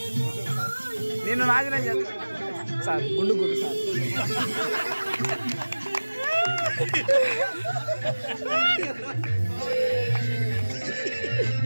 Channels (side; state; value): both; inverted; correlation -1.00